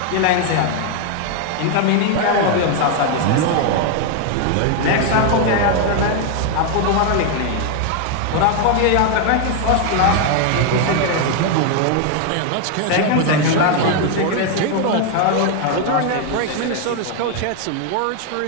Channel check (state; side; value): different; both; correlation 0.01